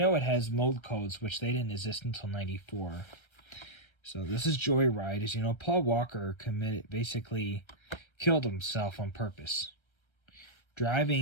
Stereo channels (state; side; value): late; right; 1.3 ms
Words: it has mold codes, which they didn't exist until 94. So this is Joyride. As you know, Paul Walker basically killed himself on purpose,